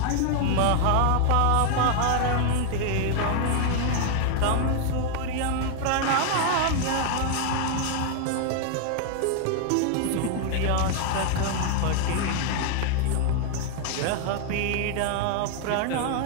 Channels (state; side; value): different; both; correlation 0.00